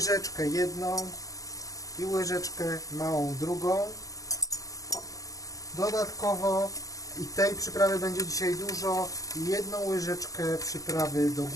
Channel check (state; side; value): late; right; 0.17 ms